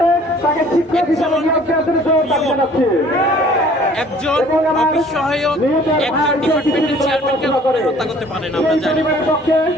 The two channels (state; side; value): normal; both; correlation 0.53